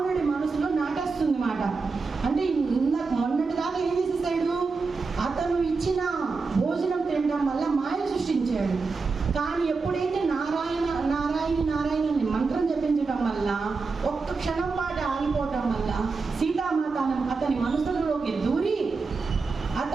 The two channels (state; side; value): quieter; left; 4.4 dB